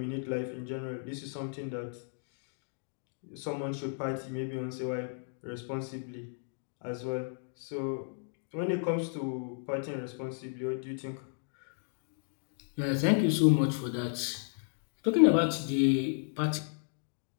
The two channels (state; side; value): silent; right; digital silence